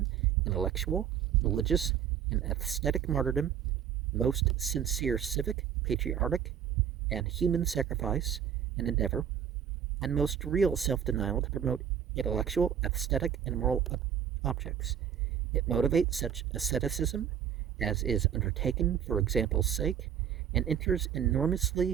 intellectual, religious, and aesthetic martyrdom, most sincere civic, patriotic, and human sacrifice and endeavor, and most real self-denial to promote intellectual, aesthetic, and moral objects. It motivates such asceticism as is undertaken for example's sake, and enters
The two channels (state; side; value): quieter; left; 8.8 dB